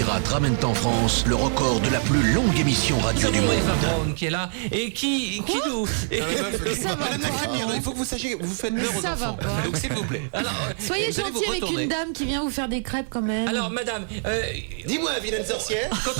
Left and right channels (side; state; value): left; silent; 62 dB below the other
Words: ramènent en France le record de la plus longue émission radio du monde. Eva Braun qui est là et qui nous... Madame la Crémière, il faut que vous sachiez, vous faites peur aux Ça va enfants. pas. Donc s'il vous plaît. Alors, Soyez vous allez vous gentil avec retourner. une dame qui vient vous faire des crêpes quand même. alors madame, Dis-moi, vilaine sorcière, quand